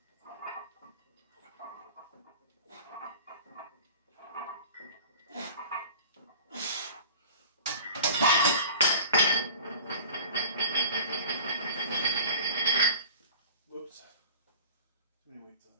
Whoops. Too many weights on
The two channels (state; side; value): inverted; both; correlation -0.43